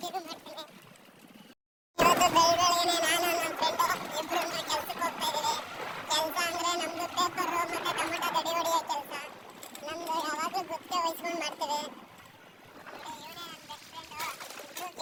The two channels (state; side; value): identical; both; correlation 1.00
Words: ಮಾಡ್ತೀನಿ. ಇವತ್ತು ಬೆಳಗ್ಗೆನೆ ನಾನು ನಮ್ಮ ಫ್ರೆಂಡು ಇಬ್ರು ಕೆಲ್ಸಕ್ಕೆ ಹೋಗ್ತಾ ಇದೀವಿ. ಕೆಲಸ ಅಂದ್ರೆ ನಮ್ದು ಪೇಪರ್ ಮತ್ತೆ ಟೊಮೆಟೊ ಗಡಿ ಹೊಡಿಯೋ ಕೆಲಸ. ನಮ್ದು ಯಾವಾಗಲೂ ಗುತ್ತಿಗೆ ವಹಿಸ್ಕೊಂಡು ಮಾಡ್ತೀವಿ.